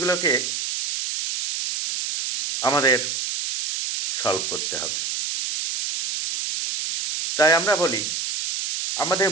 আমাদের সলভ করতে হবে। তাই আমরা বলি, আমাদের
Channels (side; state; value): right; noise; hiss, 3 dB below the sound